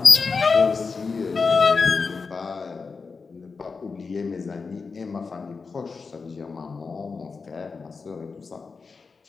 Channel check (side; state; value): right; quieter; 4.7 dB